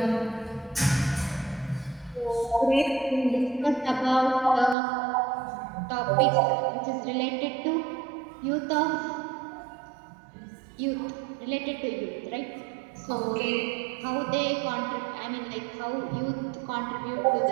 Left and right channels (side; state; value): left; drops out; at 4.8 s